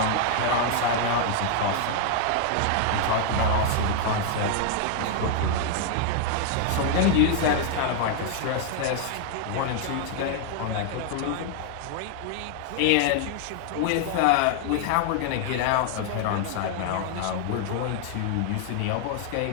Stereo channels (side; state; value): both; different; correlation 0.00